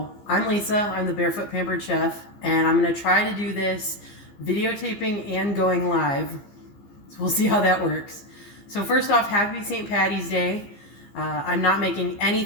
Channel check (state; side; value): late; right; 15 ms